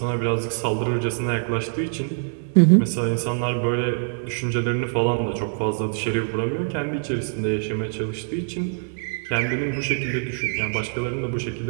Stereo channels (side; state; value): left; silent; 63 dB below the other